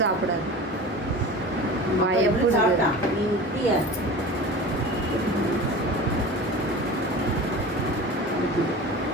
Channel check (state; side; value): normal; both; correlation 0.35